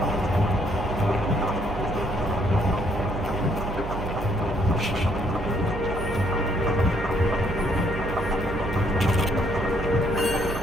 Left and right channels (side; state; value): right; noise; hum, 6 dB below the sound